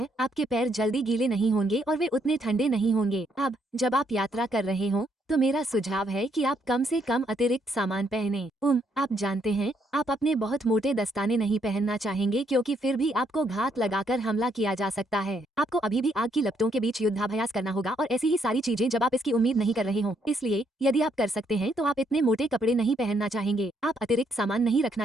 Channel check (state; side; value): normal; both; correlation 0.73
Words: आपके पैर जल्दी गीले नहीं होंगे और वे उतने ठंडे नहीं होंगे। अब जब आप यात्रा कर रहे हों तो मेरा सुझाव है कि आप कम से कम अतिरिक्त सामान पहनें। आप जानते हैं, आप अपने बहुत मोटे दस्ताने नहीं पहनना चाहेंगे क्योंकि फिर भी आपको घात लगाकर हमला किया जा सकता है। आपको अभी भी आग की लपटों के बीच युद्धाभ्यास करना होगा और ऐसी ही सारी चीजें जब आप इसकी उम्मीद नहीं कर रहे हों। इसलिए यदि आप कर सकते हैं तो आप इतने मोटे कपड़े नहीं पहनना चाहेंगे। आप अतिरिक्त सामान नहीं रखना